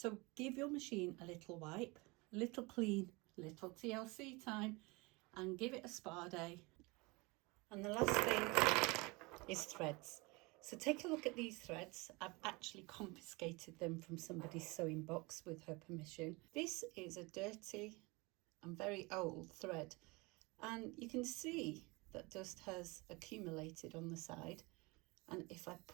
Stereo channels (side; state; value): left; quieter; 25.6 dB